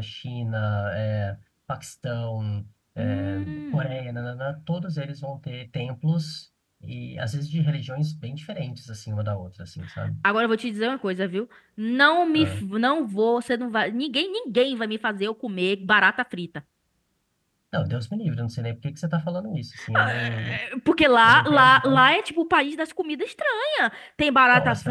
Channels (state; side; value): identical; both; correlation 1.00